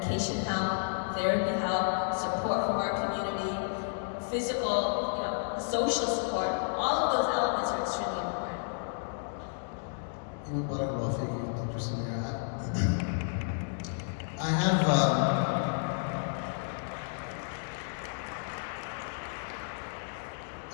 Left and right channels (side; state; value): right; silent; digital silence